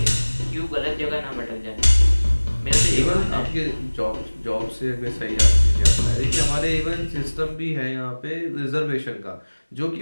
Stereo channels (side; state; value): both; inverted; correlation -1.00